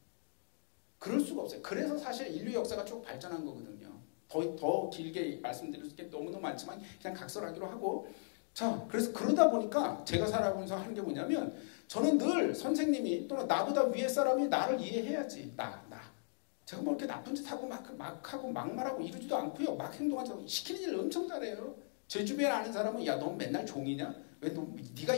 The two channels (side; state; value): right; silent; digital silence